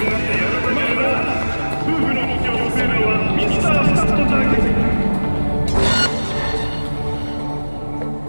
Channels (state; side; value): inverted; both; correlation -1.00